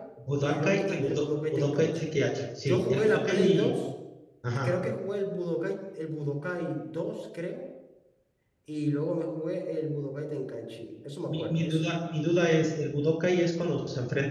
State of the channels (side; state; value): both; identical; correlation 1.00